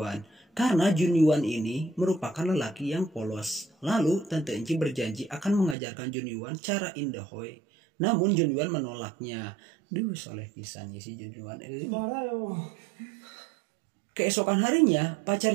Karena Jun Yuan ini merupakan lelaki yang polos. Lalu Tante Enci berjanji akan mengajarkan Jun Yuan cara indahoy. Namun Jun Yuan menolaknya. Duh, soleh pisannya si Jun Yuan. Keesokan harinya,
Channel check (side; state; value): left; drops out; at 5.8 s